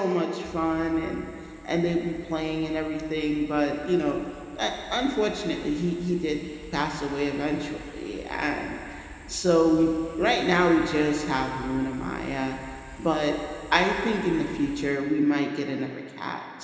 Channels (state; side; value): identical; both; correlation 1.00